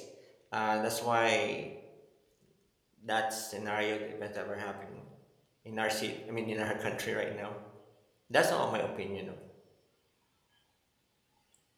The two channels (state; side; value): identical; both; correlation 1.00